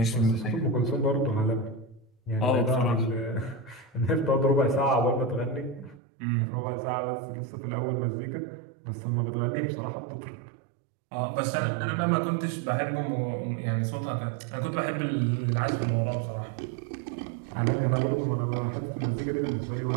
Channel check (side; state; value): left; drops out; at 6.0 s